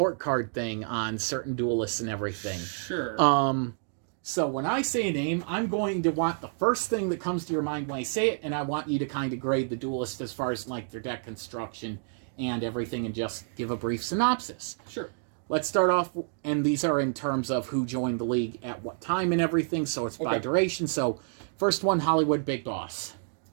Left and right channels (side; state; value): left; silent; digital silence